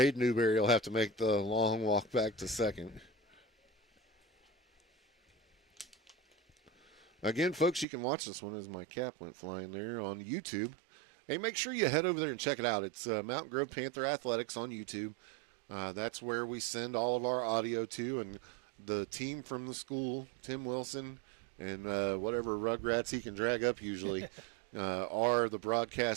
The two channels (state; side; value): drops out; left; at 7.9 s